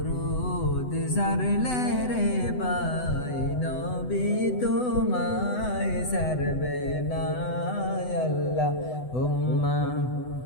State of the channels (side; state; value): right; late; 8.0 ms